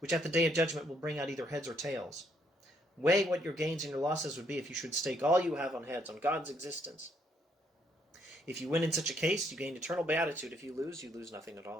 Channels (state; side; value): normal; both; correlation 0.71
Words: which at the day of judgment will bring out either heads or tails. Weigh what your gains and your losses would be if you should stake all you have on heads, on God's existence. If you win in such a case, you gain eternal beatitude. If you lose nothing at